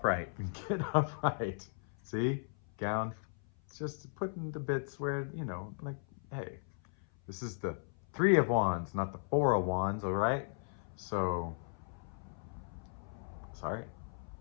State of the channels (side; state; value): right; silent; 53 dB below the other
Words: Get upright. See? Gown. It's just putting the bits where, you know, like, hey, this is the 3 of wands, not the 4 of wands, all right? So, sorry.